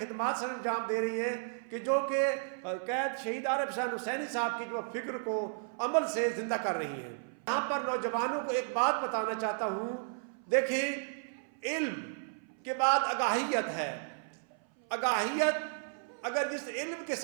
سر انجام دے رہی ہیں، کہ جو کہ قید شہید عارف حسین حسینی صاحب کی جو فکر کو عمل سے زندہ کر رہی ہیں۔ یہاں پر نوجوانوں کو ایک بات بتانا چاہتا ہوں، دیکھیں علم کے بعد آگاہیت ہے۔ آگاہیت اگر جس علم کے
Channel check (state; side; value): silent; left; 55 dB below the other